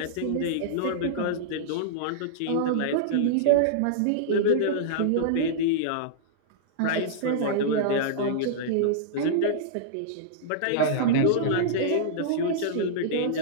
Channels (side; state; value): both; different; correlation -0.02